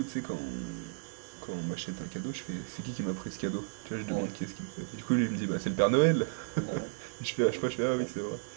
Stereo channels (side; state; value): left; silent; digital silence